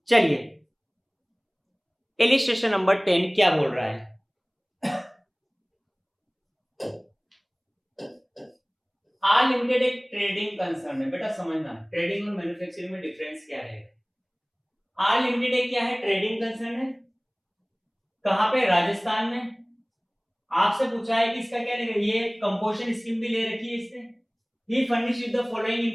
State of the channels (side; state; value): both; identical; correlation 1.00